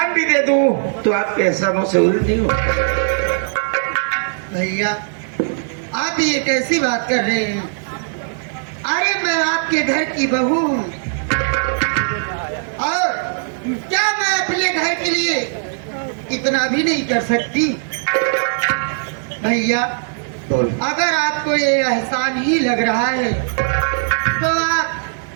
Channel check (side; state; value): left; silent; digital silence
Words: भी दे दूं तो आपके एहसानों से उल्टी नहीं हो। भैया आप ये कैसी बात कर रहे हैं? अरे मैं आपके घर की बहू हूँ और क्या मैं अपने घर के लिए इतना भी नहीं कर सकती? भैया अगर आपको ये एहसान ही लग रहा है तो